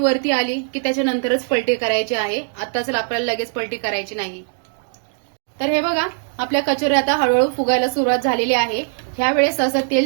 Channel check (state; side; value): silent; left; digital silence